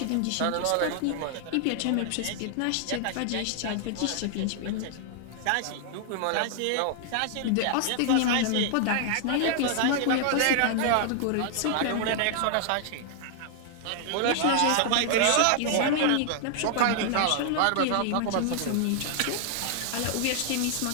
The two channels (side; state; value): both; different; correlation 0.00